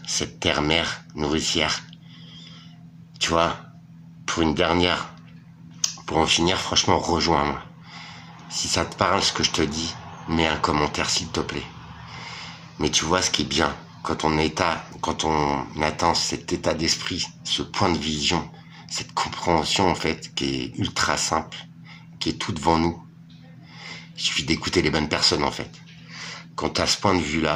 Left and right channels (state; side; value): identical; both; correlation 1.00